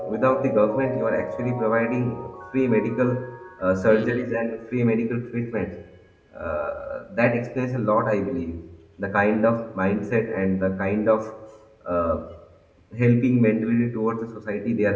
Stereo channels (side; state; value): both; identical; correlation 1.00